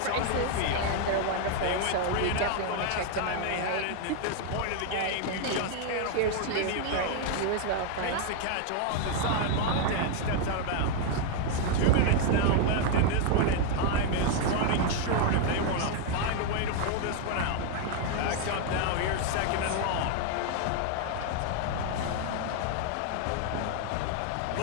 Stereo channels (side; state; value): both; different; correlation 0.00